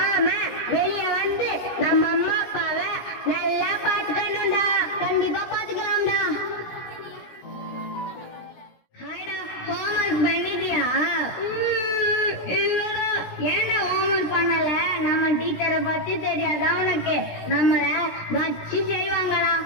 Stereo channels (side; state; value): right; late; 17 ms